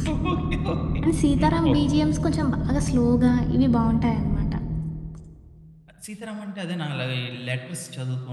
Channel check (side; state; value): both; identical; correlation 1.00